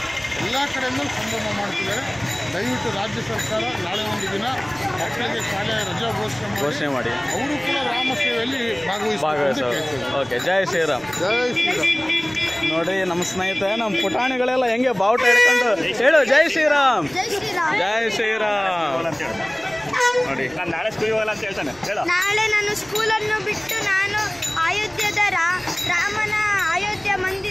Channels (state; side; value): noise; right; rumble, 26 dB below the sound